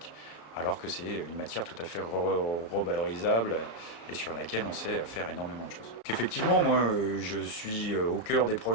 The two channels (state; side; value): late; right; 33 ms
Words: alors que c'est une matière tout à fait revalorisable et sur laquelle on sait faire énormément de choses. Effectivement, moi, je suis au cœur des